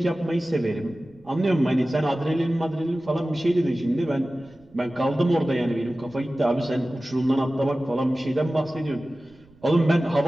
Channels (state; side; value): noise; right; rumble, 28 dB below the sound